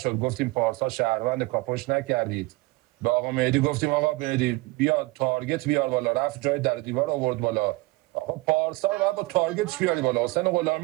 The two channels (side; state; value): left; quieter; 23.0 dB